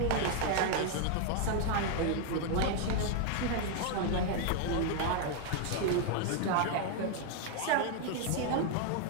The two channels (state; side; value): different; both; correlation 0.00